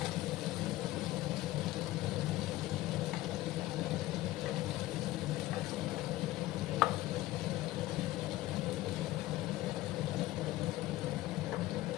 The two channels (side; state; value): right; quieter; 16.7 dB